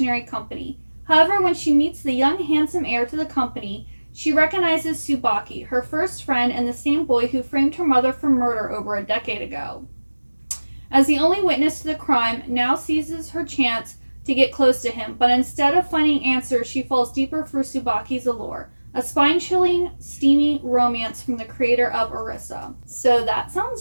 company. However, when she meets the young, handsome heir to the company, she recognizes Tsubaki, her first friend and the same boy who framed her mother for murder over a decade ago. As the only witness to the crime, now seizes her chance to get close to him, but instead of finding answers, she falls deeper for Tsubaki's allure. A spine-chilling, steamy romance from the creator of Arisa. So that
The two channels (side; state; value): both; inverted; correlation -1.00